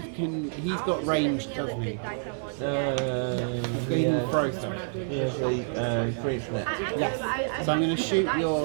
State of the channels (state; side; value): silent; left; digital silence